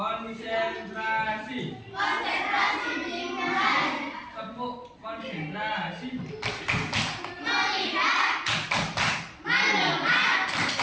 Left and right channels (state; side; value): identical; both; correlation 1.00